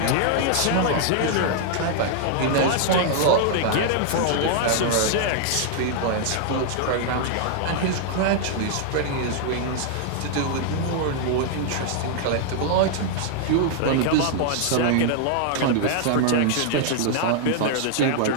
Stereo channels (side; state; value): both; different; correlation 0.00